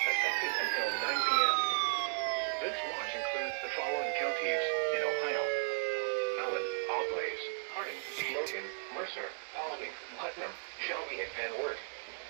effective until 9 p.m. This watch includes the following counties in Ohio: Allen, Auglaize, Harding, Logan, Mercer, Paulding, Putnam, Shelby, and Van Wert.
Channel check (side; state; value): left; silent; digital silence